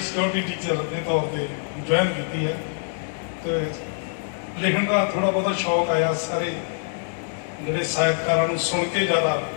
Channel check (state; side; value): silent; right; digital silence